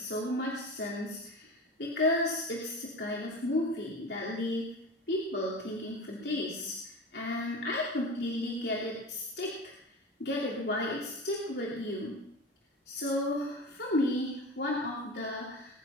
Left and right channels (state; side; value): normal; both; correlation 0.30